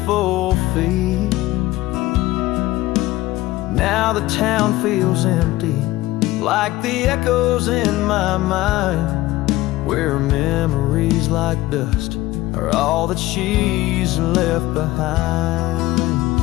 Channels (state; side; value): quieter; right; 17.4 dB